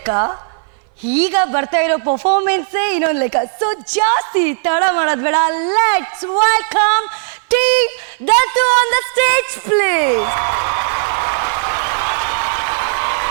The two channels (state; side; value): silent; left; 61 dB below the other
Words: ಈಗ ಬರ್ತಾ ಇರೋ ಪರ್ಫಾರ್ಮೆನ್ಸೇ ಇನ್ನೊಂದು ಲೆಕ್ಕ. ಸೊ ಜಾಸ್ತಿ ತಡ ಮಾಡೋದ್ ಬೇಡ, ಲೆಟ್ಸ್ ವೆಲ್ಕಮ್ ಟೀಮ್ ದತ್ತು ಆನ್ ದ ಸ್ಟೇಜ್ ಪ್ಲೀಸ್.